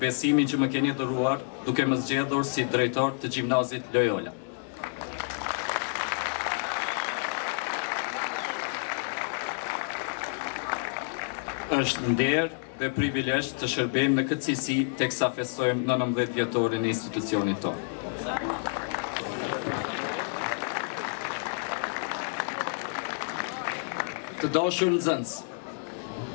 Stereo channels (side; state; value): right; silent; digital silence